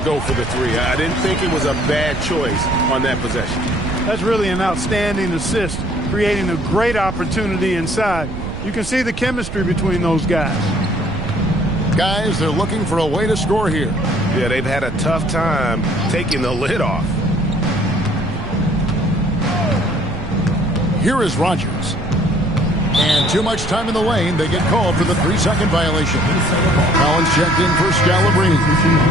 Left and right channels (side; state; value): right; noise; rumble, 9 dB below the sound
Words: for the three. I didn't think it was a bad choice on that possession. That's really an outstanding assist, creating a great opportunity inside. You can see the chemistry between those guys. Guys, they're looking for a way to score here. Yeah, they've had a tough time taking the lid off. Here is Rogers. And too much time in the lane. They get called for the 3-second violation. Collins checked in for Scalabrine.